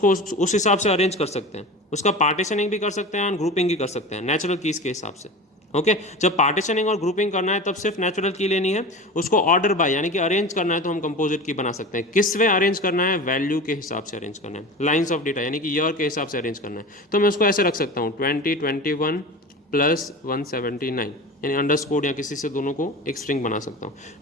उस हिसाब से अरेंज कर सकते हैं, उसका पार्टीशनिंग भी कर सकते हैं और ग्रुपिंग भी कर सकते हैं नेचुरल कीज के हिसाब से। ओके, जब पार्टीशनिंग और ग्रुपिंग करना है तब सिर्फ नेचुरल की लेनी है, उसको ऑर्डर बाय यानी कि अरेंज करना है तो हम कंपोजिट की बना सकते हैं। किस वे अरेंज करना है, वैल्यू के हिसाब से अरेंज करना है, लाइंस ऑफ डेटा यानी कि ईयर के हिसाब से अरेंज करना है, तो मैं उसको ऐसे रख सकता हूँ 2021 प्लस 179, यानी अंडरस्कोर या किसी से दोनों को एक स्ट्रिंग बना सकता हूँ।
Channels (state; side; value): normal; both; correlation 0.32